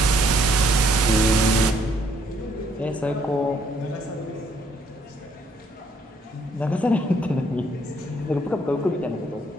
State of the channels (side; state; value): both; normal; correlation 0.67